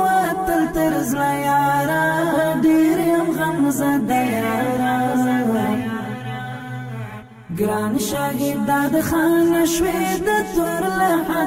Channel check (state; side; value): identical; both; correlation 1.00